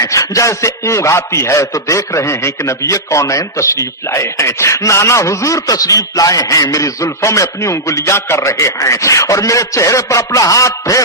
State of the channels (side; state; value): both; normal; correlation -0.09